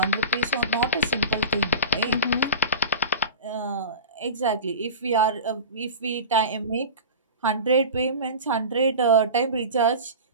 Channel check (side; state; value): both; inverted; correlation -0.31